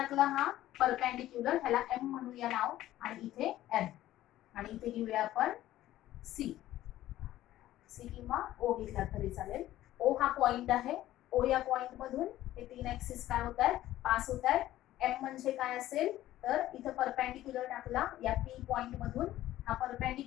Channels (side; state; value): right; quieter; 14.3 dB